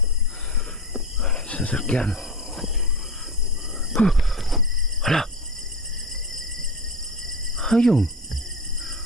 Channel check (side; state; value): both; normal; correlation 0.27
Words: Sasakyan. Hala. Ayun.